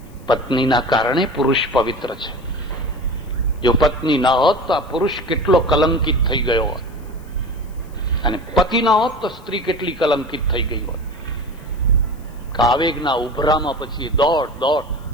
પત્નીના કારણે પુરુષ પવિત્ર છે. જો પત્ની ના હોત તો આ પુરુષ કેટલો કલંકિત થઈ ગયો હોત, અને પતિ ના હોત તો સ્ત્રી કેટલી કલંકિત થઈ ગઈ હોત. આવેગના ઉભરામાં પછી દોડ દોડ,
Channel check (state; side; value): noise; left; hiss, 29 dB below the sound